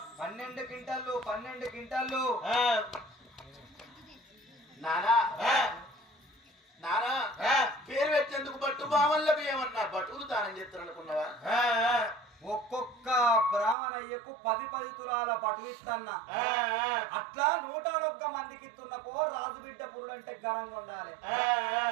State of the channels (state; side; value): drops out; left; at 13.8 s